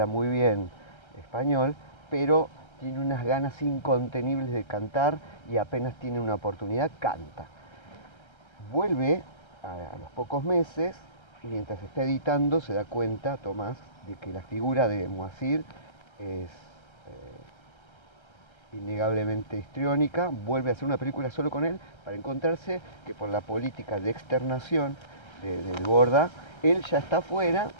muy bien español, pero tiene unas ganas incontenibles de cantar y apenas tiene una oportunidad, canta. Vuelve a los pocos meses y mientras está editando se da cuenta, Tomás, de que la figura de Moacir es innegablemente histriónica, vuelve a hacer una película solo con él para encontrarse que por la política de externación del Borda, él ya está afuera,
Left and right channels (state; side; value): late; right; 1.3 ms